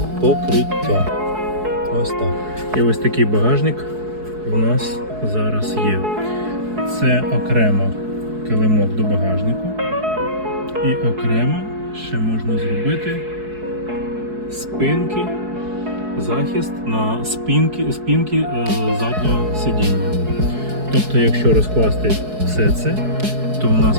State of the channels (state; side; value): late; left; 4.7 ms